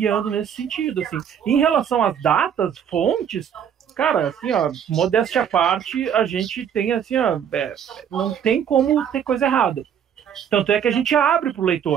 nesse sentido, assim. Em relação às datas, fontes, cara, assim, ó, modéstia à parte, a gente tem, assim, ó, não tem como ter coisa errada. Tanto é que a gente abre para o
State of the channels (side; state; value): left; quieter; 8.5 dB